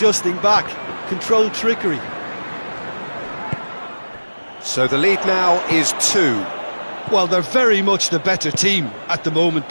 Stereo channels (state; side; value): inverted; both; correlation -1.00